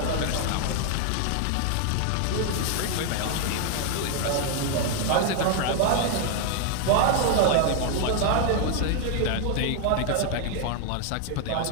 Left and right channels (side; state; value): both; different; correlation 0.00